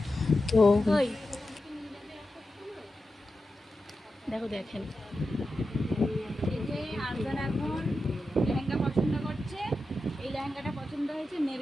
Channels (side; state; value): both; normal; correlation 0.91